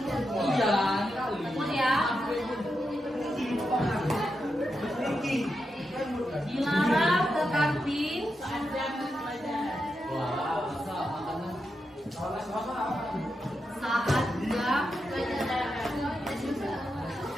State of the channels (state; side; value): normal; both; correlation 0.86